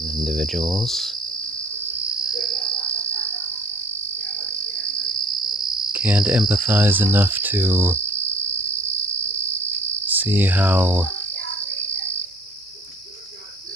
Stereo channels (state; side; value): normal; both; correlation 0.52